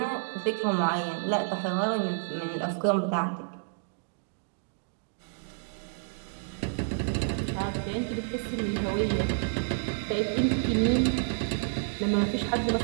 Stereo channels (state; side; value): silent; left; digital silence